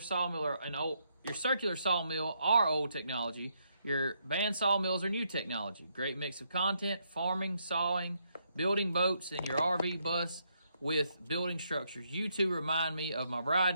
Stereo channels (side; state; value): both; inverted; correlation -0.76